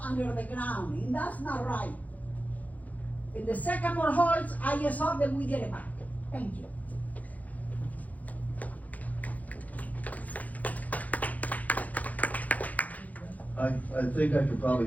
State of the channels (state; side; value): late; right; 0.077 ms